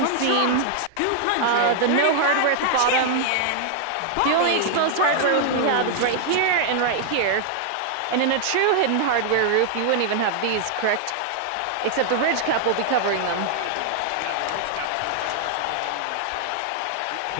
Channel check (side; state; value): both; different; correlation -0.01